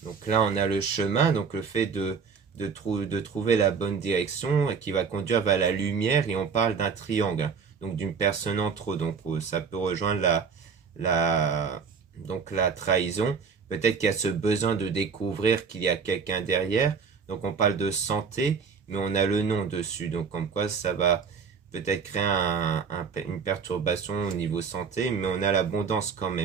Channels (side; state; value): left; quieter; 5.8 dB